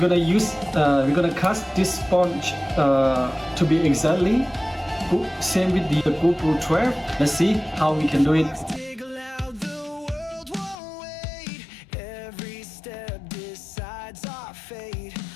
cast this sponge to be exactly same with the GoPro 12. Let's see how we can do it. Every step decides our fate.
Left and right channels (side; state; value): right; drops out; at 10.8 s